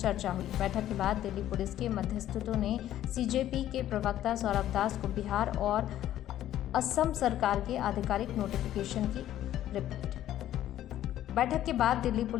हुई। बैठक के बाद दिल्ली पुलिस के मध्यस्थों ने सीजेपी के प्रवक्ता सौरभ दास को बिहार और असम सरकार के आधिकारिक नोटिफिकेशन की रिपोर्ट। बैठक के बाद दिल्ली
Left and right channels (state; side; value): quieter; right; 12.5 dB